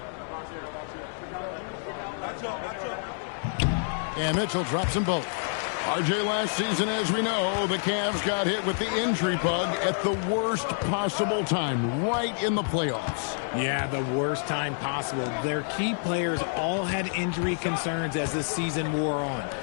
And Mitchell drops them both. RJ, last season, as we know, the Cavs got hit with the injury bug at the worst possible time, right in the playoffs. Yeah, the worst time possible. Their key players all had injury concerns as the season wore on.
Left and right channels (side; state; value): right; silent; digital silence